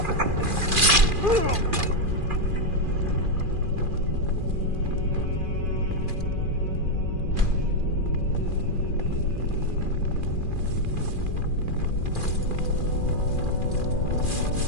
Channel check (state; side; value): late; left; 2.4 ms